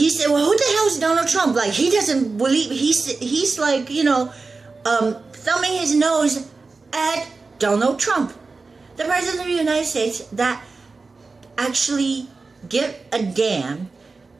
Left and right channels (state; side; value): quieter; left; 4.0 dB